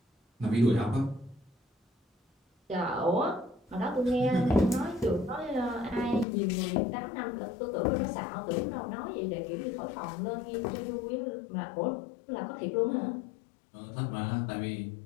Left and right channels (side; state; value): right; drops out; at 6.2 s